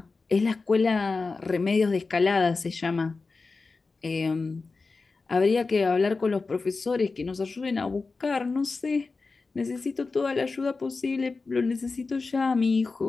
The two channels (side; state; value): right; quieter; 4.1 dB